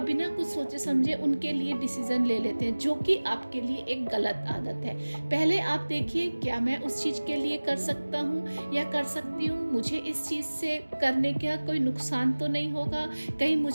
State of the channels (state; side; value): inverted; both; correlation -1.00